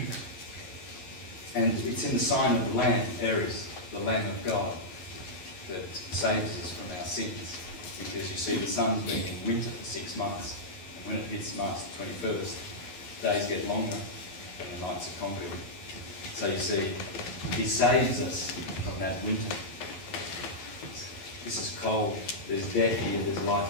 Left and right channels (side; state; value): right; late; 11 ms